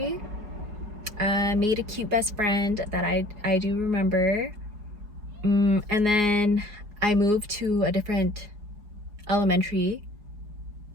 Made a cute best friend that I do remember. And then I moved to a different elementary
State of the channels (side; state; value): left; late; 4.8 ms